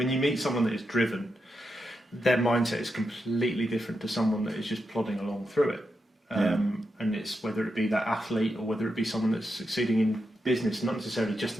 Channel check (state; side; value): normal; both; correlation 0.86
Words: you meet someone that is driven, their mindset is completely different to someone that is just plodding along through it. And it's whether it be that athlete or whether it be someone that's succeeding in business, not necessarily just